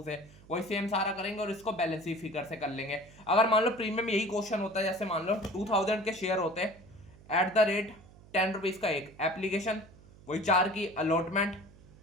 से, वही सेम सारा करेंगे और इसको बैलेंस फिगर से कर लेंगे। अगर मान लो प्रीमियम यही क्वेश्चन होता है, जैसे मान लो 2000 के शेयर होते हैं एट द रेट 10 रुपीज का एक, एप्लीकेशन वही 4 की, अलॉटमेंट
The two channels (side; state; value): right; noise; hum, 22 dB below the sound